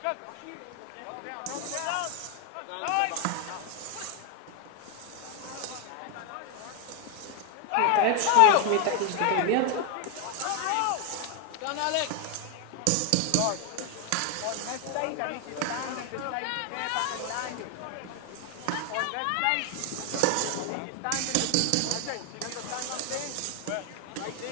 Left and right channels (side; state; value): both; different; correlation 0.01